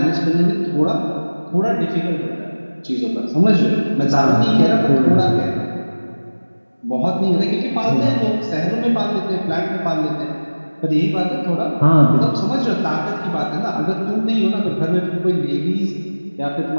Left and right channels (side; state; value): both; inverted; correlation -1.00